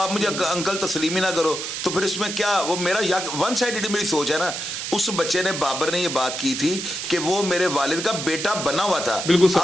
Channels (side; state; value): right; noise; hiss, 5 dB below the sound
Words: मुझे अंकल तस्लीम ही ना करो, तो फिर इसमें क्या वो मेरा या वन साइडेड मेरी सोच है ना। उस बच्चे ने बाबर ने ये बात की थी कि वो मेरे वालिद का बेटा बना हुआ था।